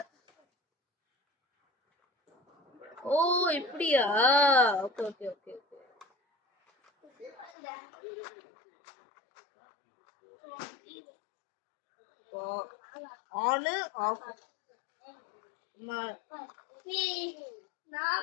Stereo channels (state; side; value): drops out; right; at 7.6 s